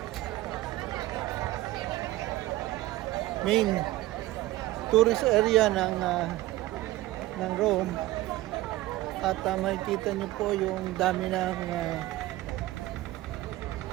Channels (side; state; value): left; quieter; 17.3 dB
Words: main tourist area ng Rome. At makikita nyo po yung dami ng